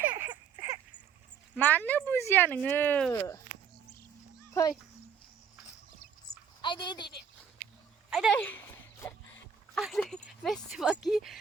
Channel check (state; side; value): quieter; left; 7.2 dB